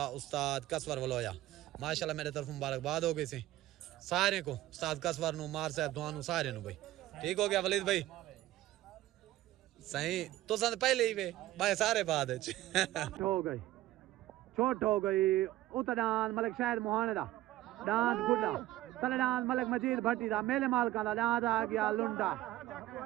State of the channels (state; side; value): quieter; left; 15.7 dB